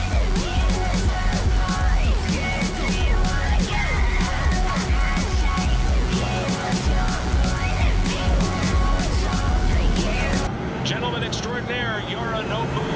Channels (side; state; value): both; identical; correlation 1.00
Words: Gentleman extraordinaire, Yorinobu